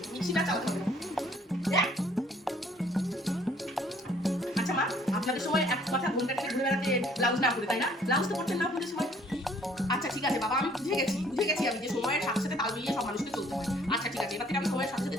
মিক্সিটা চালাতে হবে না। হ্যাঁ? আচ্ছা মা, আপনাদের সময় এক কথা ঘুমটা টেনে ঘুরে বেড়াতে ব্লাউজ না করে, তাই না? ব্লাউজ তো করতেন না আপনাদের সময়। আচ্ছা ঠিক আছে বাবা, আমি বুঝে গেছি।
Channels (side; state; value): both; normal; correlation 0.59